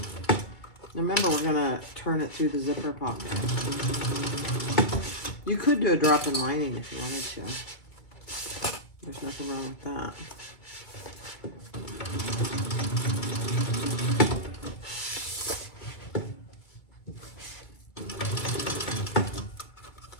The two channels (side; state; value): right; late; 2.3 ms